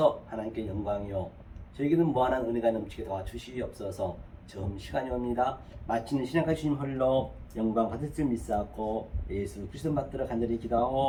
하나님께 영광이요 저에게는 무한한 은혜가 넘치게 도와주시옵소서. 처음 시간이 옵니다. 마치는 신약한 주님 홀로 영광 받을 줄 믿사옵고 예수 그리스도 받들어 간절히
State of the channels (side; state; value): both; identical; correlation 1.00